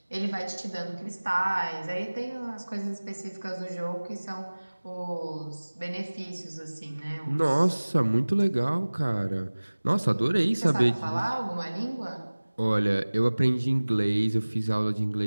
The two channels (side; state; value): both; inverted; correlation -1.00